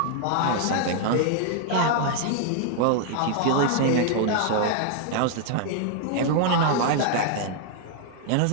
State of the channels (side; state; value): both; different; correlation 0.00